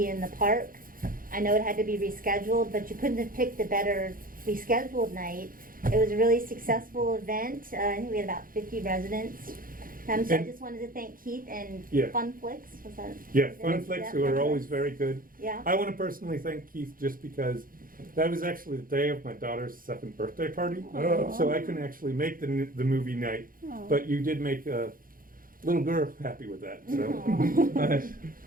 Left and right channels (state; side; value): late; left; 0.41 ms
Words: in the park. I know it had to be rescheduled, but you couldn't have picked a better rescheduled night. It was a really successful event. I think we had about 50 residents. So I And- just wanted to thank Keith and Yeah. Fun Flicks. Was that? Yeah, is it- Funflix, yeah, who are Fun always Flicks. very good. Yeah. I want to personally thank Keith just because that was actually the day of my daughter's 2nd birthday party. Aw. So I couldn't actually make the movie night, Aw. but you did make a little girl happy with that, so. Aw. Nice.